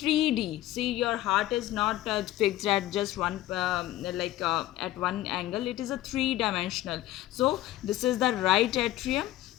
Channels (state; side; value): quieter; right; 15.1 dB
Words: See, your heart is not fixed at just one at one angle. It is a three-dimensional. So this is the right atrium,